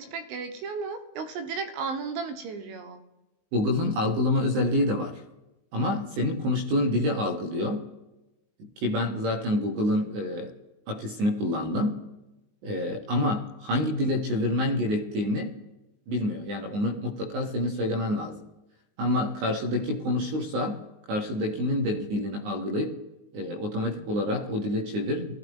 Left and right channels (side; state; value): left; late; 19 ms